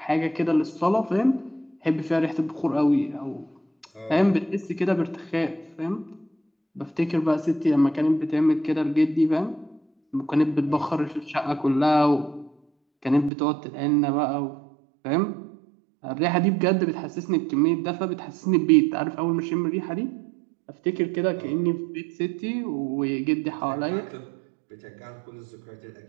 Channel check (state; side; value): drops out; left; at 13.3 s